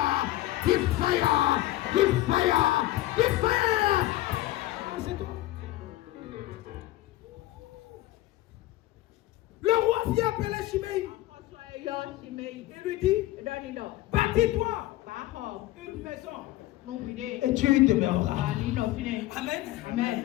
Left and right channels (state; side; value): quieter; right; 16.3 dB